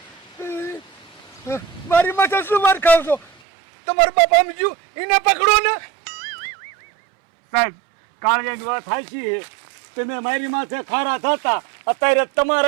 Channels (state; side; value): drops out; left; at 3.3 s